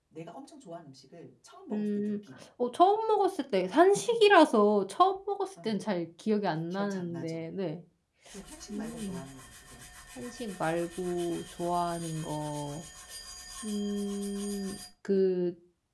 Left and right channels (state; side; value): identical; both; correlation 1.00